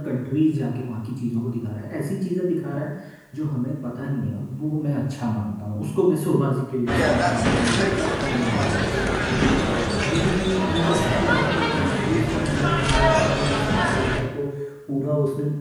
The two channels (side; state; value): both; identical; correlation 1.00